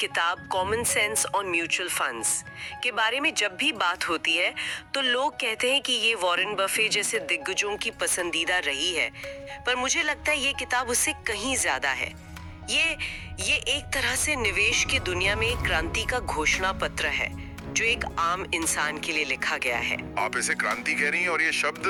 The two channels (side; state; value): both; identical; correlation 1.00